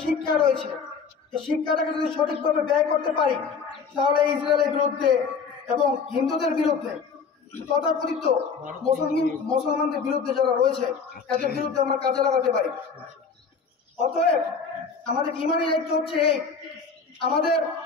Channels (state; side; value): quieter; right; 5.5 dB